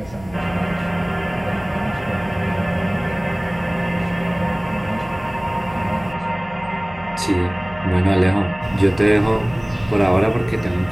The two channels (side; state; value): left; noise; hum, 19 dB below the sound